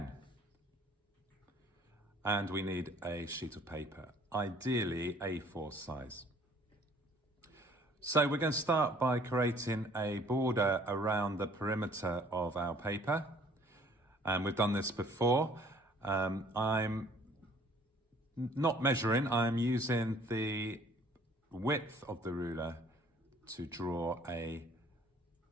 And we need a sheet of paper, ideally A4 size. So we're going to start by creating a border around the perimeter of our paper. And we've done this before. I'm not measuring, I'm using the width of the ruler to draw a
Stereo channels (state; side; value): normal; both; correlation 0.56